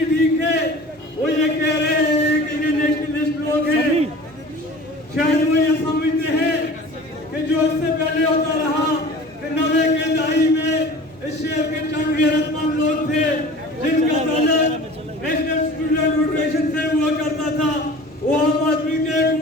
ठीक है, वो ये कह रहे हैं कि ये नेशनलिस्ट लोग हैं। शायद वो ये समझते हैं कि जो इससे पहले होता रहा कि 90 के दहाई में इस शहर के चंद गैरतमंद लोग थे जिनका ताल्लुक नेशनल स्टूडेंट फेडरेशन से हुआ करता था। वो आम आदमी के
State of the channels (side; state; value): both; normal; correlation 0.41